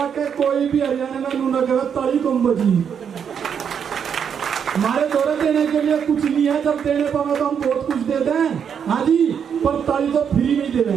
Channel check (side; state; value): left; quieter; 7.5 dB